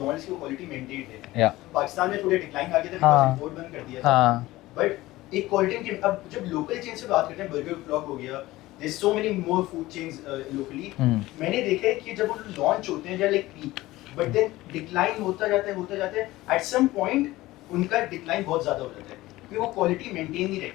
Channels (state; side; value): quieter; right; 17.9 dB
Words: की क्वालिटी मेंटेन्ड है। पाकिस्तान में थोड़ा डिक्लाइन आ गया था बिकॉज़ इंपोर्ट बंद कर दिया था, बट एक क्वालिटी की अब जब लोकल चेन से बात करते हैं, बर्गर फ्लॉग हो गया, there is so many more food chains locally, मैंने देखा है कि जब वो लॉन्च होते हैं like peak, but then decline होता जाता है एट सम पॉइंट उनका डिक्लाइन बहुत ज्यादा हो जाता है क्योंकि वो क्वालिटी मेंटेन नहीं